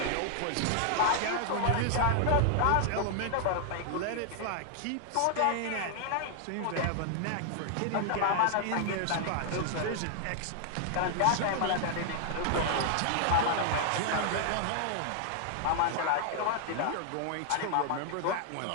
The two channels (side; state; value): both; different; correlation 0.00